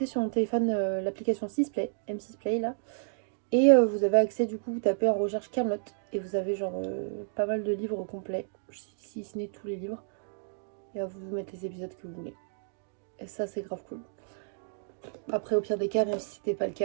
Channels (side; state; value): left; silent; digital silence